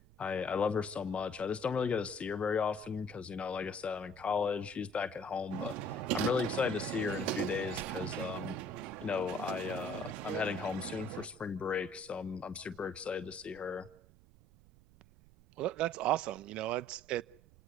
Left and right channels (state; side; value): noise; right; rumble, 25 dB below the sound